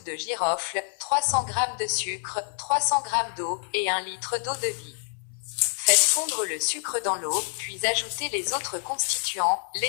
de girofle, 300 g de sucre, 300 g d'eau, et 1 litre d'eau de vie. Faites fondre le sucre dans l'eau, puis ajoutez les autres constituants,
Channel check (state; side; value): silent; right; 58 dB below the other